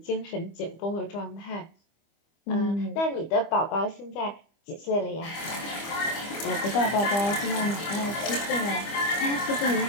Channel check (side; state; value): right; late; 25 ms